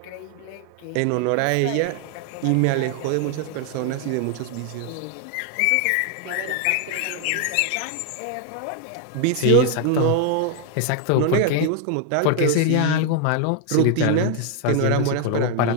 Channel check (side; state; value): both; different; correlation 0.00